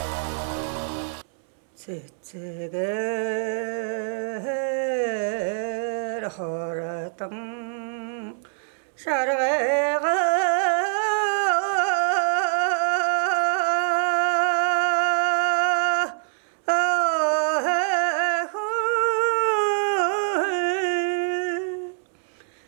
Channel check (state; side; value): silent; left; 62 dB below the other